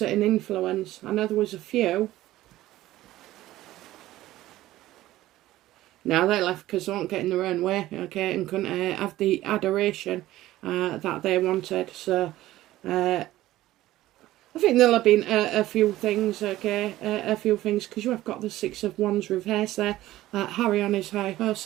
it an influence? I know there was a few. Now they left because they weren't getting their own way, okay, and couldn't have the adoration that they wanted. So I think there'll have been a few things, okay, a few things, because you have got the Six of Wands reverse there. Harry on his high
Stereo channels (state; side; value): quieter; left; 15.6 dB